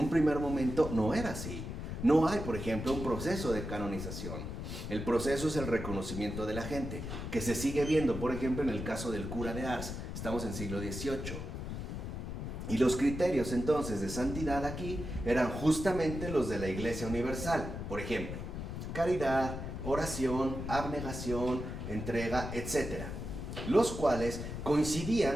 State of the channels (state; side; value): noise; left; rumble, 6 dB below the sound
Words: primer momento no era así. No hay, por ejemplo, un proceso de canonización. El proceso es el reconocimiento de la gente, que se sigue viendo, por ejemplo, en el caso del cura de Ars. Estamos en siglo XVIII. Y los criterios entonces de santidad aquí eran justamente los de la Iglesia Universal. Por ejemplo, caridad, oración, abnegación, entrega, etc. Los cuales